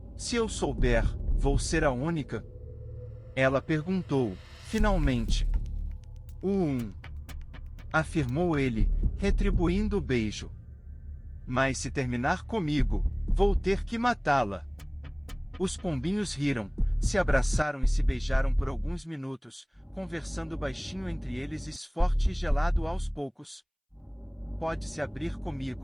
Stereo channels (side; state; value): both; identical; correlation 1.00